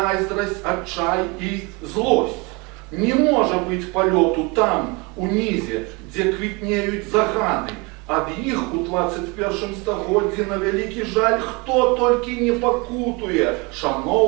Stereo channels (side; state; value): left; quieter; 28.0 dB